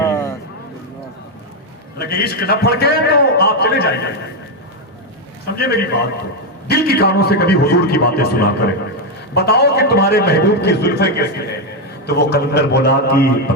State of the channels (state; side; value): normal; both; correlation 0.05